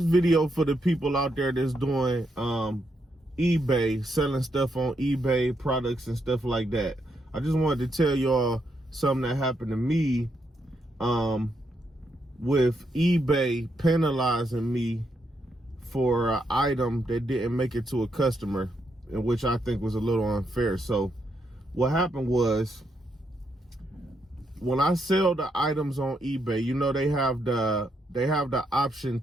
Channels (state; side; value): normal; both; correlation 0.79